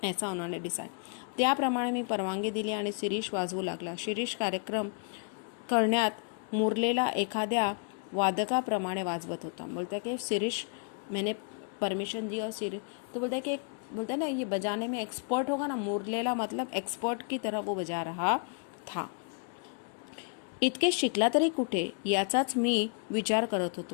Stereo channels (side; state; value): right; quieter; 38.0 dB